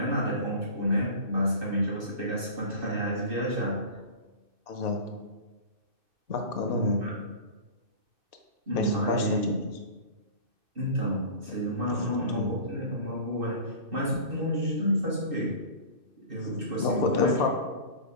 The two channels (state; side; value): late; left; 2.6 ms